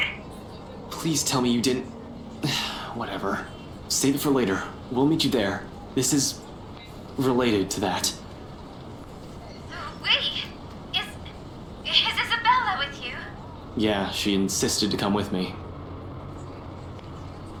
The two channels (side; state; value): both; identical; correlation 1.00